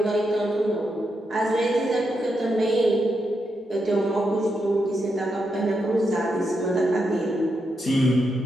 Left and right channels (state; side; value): normal; both; correlation 0.84